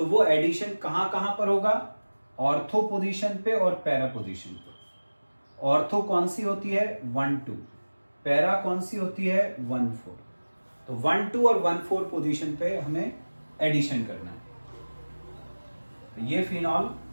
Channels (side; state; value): both; inverted; correlation -1.00